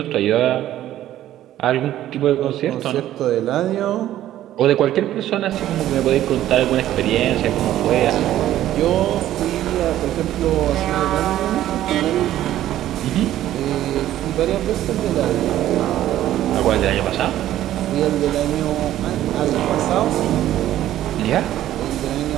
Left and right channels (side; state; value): left; quieter; 13.0 dB